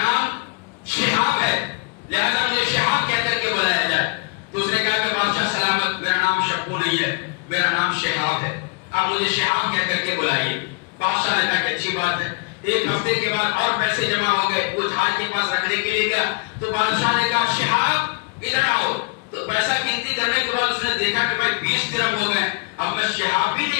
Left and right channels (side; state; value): right; quieter; 30.4 dB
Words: شہاب ہے، لہذا مجھے شہاب کہہ کر کے بلایا جائے۔ تو اس نے کہا کہ بادشاہ سلامت، میرا نام شپو نہیں ہے، میرا نام شہاب ہے، اب مجھے شہاب کہہ کر کے بلائیے۔ بادشاہ نے کہا کہ اچھی بات ہے۔ ایک ہفتے کے بعد اور پیسے جمع ہو گئے، وہ جھاڑ کے پاس رکھنے کے لیے گیا تو بادشاہ نے کہا شہاب ادھر آؤ۔ تو پیسہ گنتی کرنے کے بعد اس نے دیکھا کہ بھائی 20 درہم ہو گئے، اب میں شہاب بھی